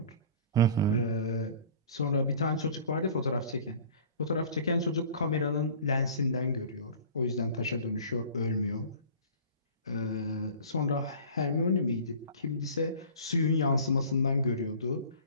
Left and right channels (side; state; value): both; inverted; correlation -0.43